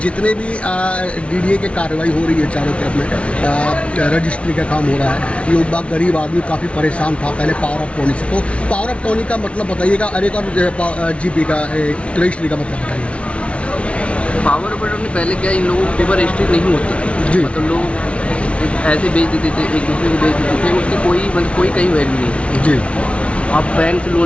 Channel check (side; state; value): right; late; 0.061 ms